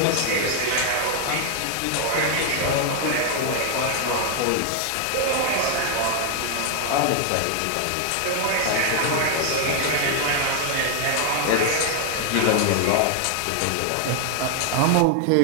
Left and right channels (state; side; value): different; both; correlation 0.00